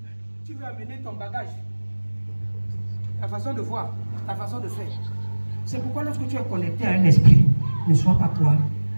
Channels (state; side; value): inverted; both; correlation -1.00